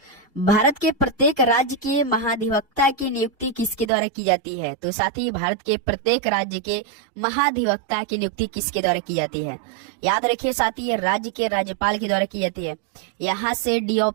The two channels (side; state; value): left; drops out; at 3.9 s